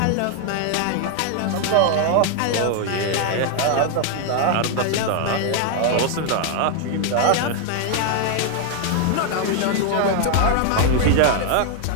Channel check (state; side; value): different; both; correlation 0.00